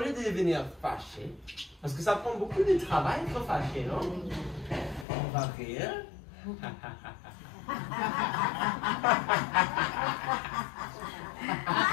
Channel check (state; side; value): drops out; right; at 5.1 s